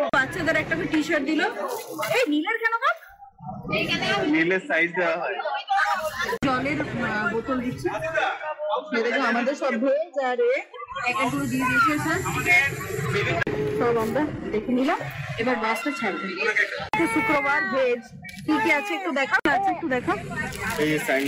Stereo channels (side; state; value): both; identical; correlation 1.00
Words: বাচ্চাদের একটা টি শার্ট দিল। এই নীলের কেন কাপ? নীলের সাইজ দেওয়া হয়। জলের বোতল দিচ্ছে। আমাদের সব ভেজ আর একটু দিয়ে দিয়েছে স্যার। সব আমরা দেখে নিলাম। এবার বাসটা ছাড়বে। শুক্রবার ভেজ কি কি আছে একটু দেখা আছে, একটু দেখা। এই